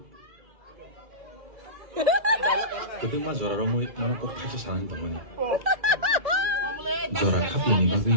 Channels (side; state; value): left; late; 1.8 ms